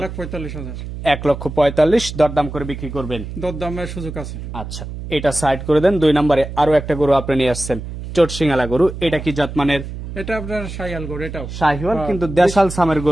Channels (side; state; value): right; noise; hum, 9 dB below the sound